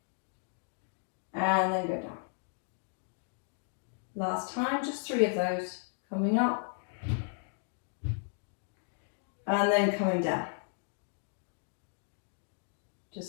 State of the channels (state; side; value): silent; right; 55 dB below the other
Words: And then go down. Last time, just 3 of those. Coming up. and then coming down.